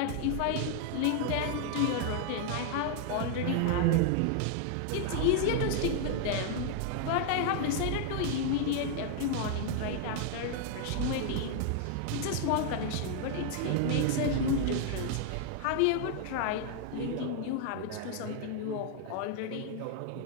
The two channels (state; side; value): different; both; correlation 0.00